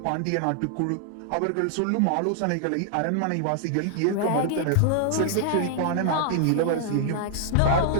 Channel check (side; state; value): both; different; correlation 0.00